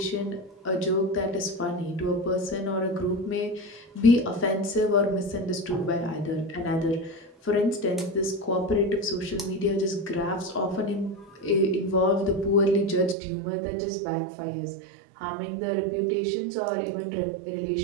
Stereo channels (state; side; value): drops out; left; at 13.2 s